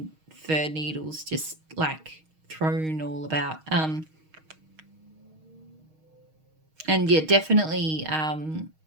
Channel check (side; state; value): left; late; 6.4 ms